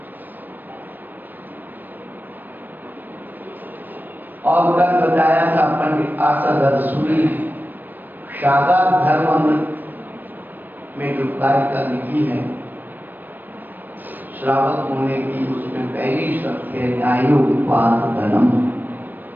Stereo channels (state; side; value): late; left; 0.090 ms